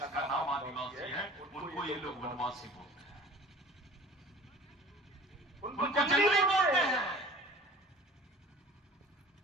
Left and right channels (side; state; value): both; normal; correlation 0.45